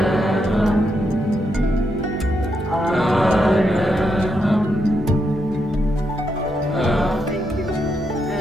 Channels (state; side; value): normal; both; correlation 0.81